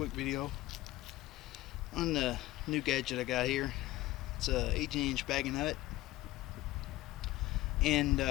video on the new gadget I got here. It's a 18-inch bag of nut, and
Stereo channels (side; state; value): right; quieter; 17.3 dB